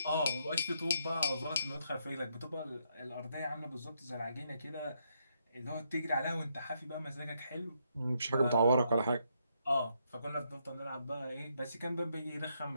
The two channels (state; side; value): inverted; both; correlation -0.77